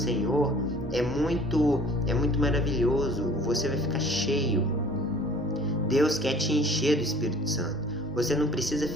é muito maravilhoso. Você vai ficar cheio. Deus quer te encher do Espírito Santo. Você não precisa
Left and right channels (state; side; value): normal; both; correlation 0.50